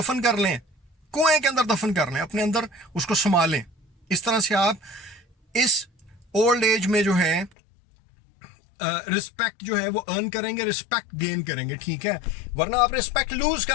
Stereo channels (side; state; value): right; drops out; at 7.5 s